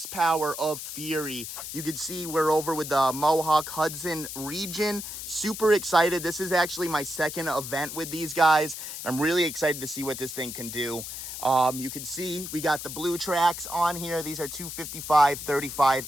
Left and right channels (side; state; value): left; noise; hiss, 8 dB below the sound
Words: of fury. You can see we're over with the Mohawk Hudson region. Super excited. This is actually my second event with these guys. I'm really excited to see what this thing can do. You can see we got the blue tracks on here. These are 255 35